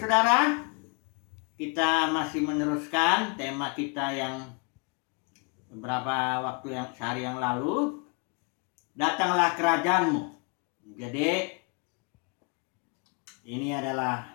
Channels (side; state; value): right; quieter; 34.3 dB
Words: Kita masih meneruskan tema kita yang beberapa waktu sehari yang lalu. Datanglah kerajaanmu. Jadi ini